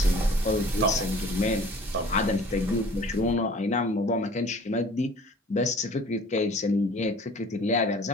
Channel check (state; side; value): normal; both; correlation 0.49